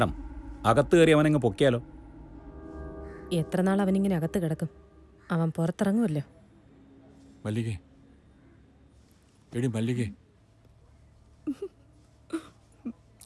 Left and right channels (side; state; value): both; identical; correlation 1.00